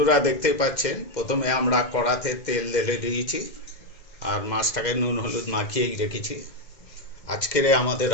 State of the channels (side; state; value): right; late; 2.0 ms